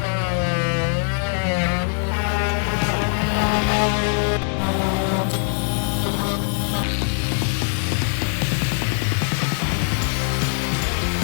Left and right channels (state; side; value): silent; right; 56 dB below the other